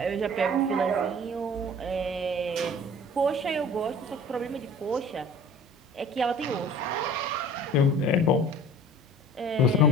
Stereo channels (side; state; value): both; normal; correlation 0.46